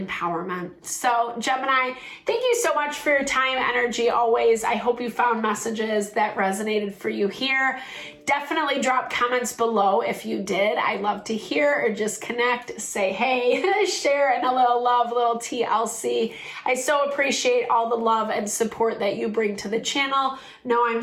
So Gemini, thank you so much for your time, energy always. I hope you found messages that resonated for you here. Definitely drop comments below if you did. I love to hear, or just connect, say hey, share, and a little love, little TLC. I so appreciate all the love and support that you bring to the channel. Know I'm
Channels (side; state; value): both; identical; correlation 1.00